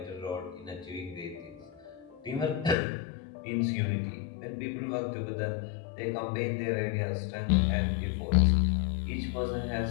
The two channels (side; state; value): right; drops out; at 2.8 s